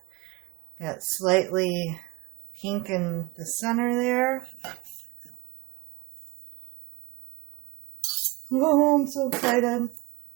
Got slightly pink in the center there. Oh, I'm so excited.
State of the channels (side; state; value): left; quieter; 25.8 dB